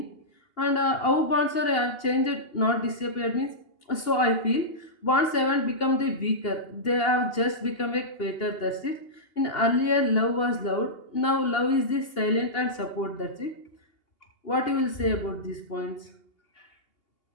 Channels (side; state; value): right; late; 2.8 ms